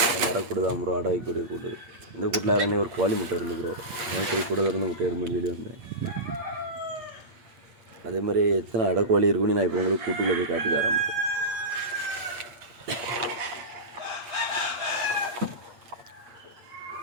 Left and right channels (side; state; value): left; late; 8.6 ms